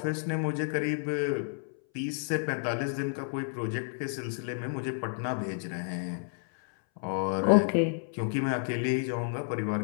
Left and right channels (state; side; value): silent; right; 57 dB below the other